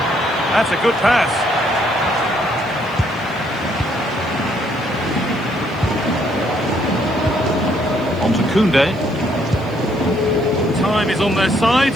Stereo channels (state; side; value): noise; left; hiss, 28 dB below the sound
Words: That's a good pass. On to Koundé. Time is on their side,